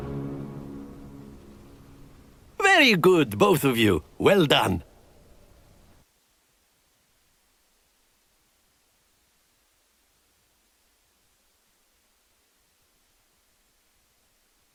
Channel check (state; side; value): identical; both; correlation 1.00